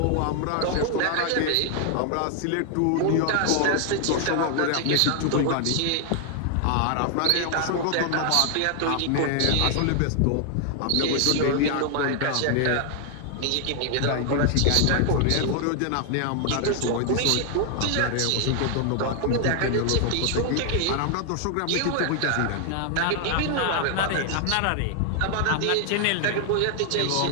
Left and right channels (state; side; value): different; both; correlation 0.00